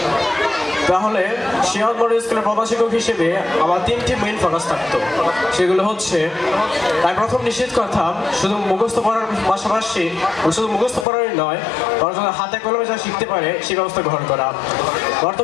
তাহলে শিরোনাম মডেল স্কুলের প্রধান শিক্ষক হিসেবে আমার 3টি মেইন ফোকাস থাকতো। সেগুলো হচ্ছে, আমি প্রথম নিশ্চিত করতাম শুধু মুখস্থ পড়ার পাশাপাশি শুধু মুখস্থ পড়ারই নয়, বরং হাতে কলমে যা শিখতে পারে সেই ব্যবস্থা গ্রহণ করা।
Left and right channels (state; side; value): drops out; right; at 11.1 s